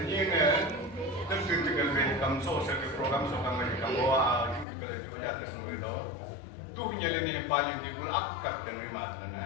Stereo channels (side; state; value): right; drops out; at 4.7 s